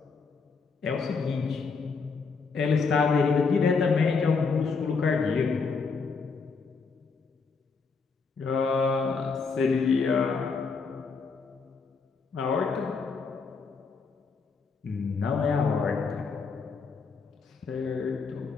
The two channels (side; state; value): right; quieter; 4.9 dB